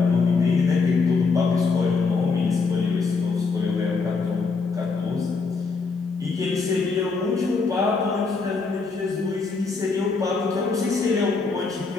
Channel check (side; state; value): right; quieter; 4.5 dB